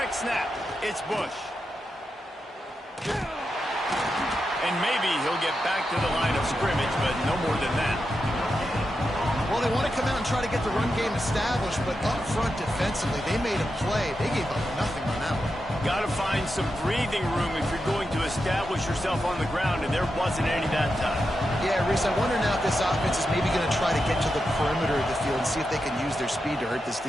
snap, it's Bush. And maybe he'll get back to the line of scrimmage, but no more than that. Well, they want to come out and try to get the run game established, but up front defensively, they made a play. They gave up nothing on that one. Got to find some breathing room if you're going to establish yourself on the ground, and there wasn't any that time. Yeah, Reese, I wonder now if this offense is maybe going to try to get to the perimeter of the field and see if they can use their speed to hurt this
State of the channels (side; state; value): both; normal; correlation 0.88